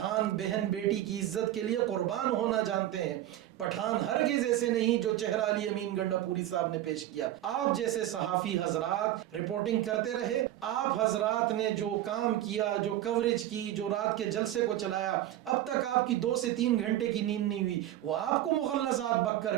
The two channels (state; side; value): quieter; left; 13.4 dB